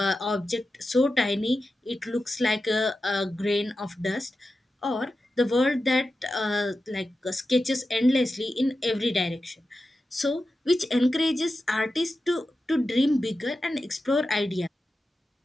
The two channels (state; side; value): normal; both; correlation 0.92